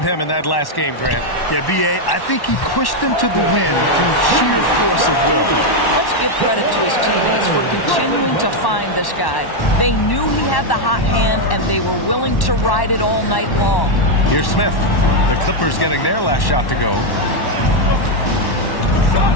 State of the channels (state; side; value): late; right; 1.1 ms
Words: in that last game, Grant. Yeah, B.A., I think he pushed them to the win through sheer force of will. Let's give credit to his teammates for continuing to find this guy. They knew he had the hot hand, and they were willing to ride it all night long. Here's Smith. The Clippers getting their last shot to go.